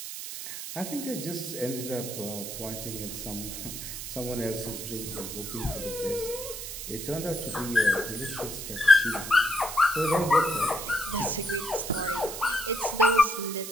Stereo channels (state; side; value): noise; right; hiss, 8 dB below the sound